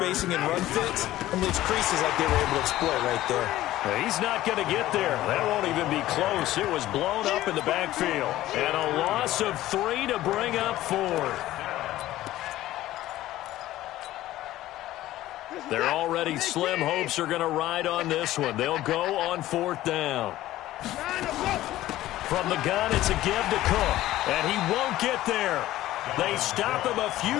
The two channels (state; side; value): quieter; right; 15.1 dB